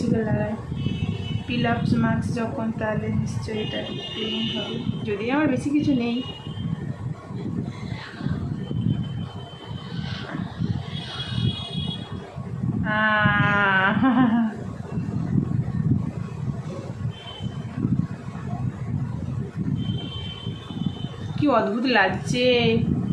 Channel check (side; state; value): both; identical; correlation 1.00